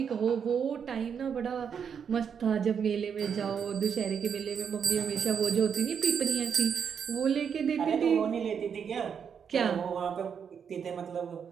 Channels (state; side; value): quieter; left; 7.2 dB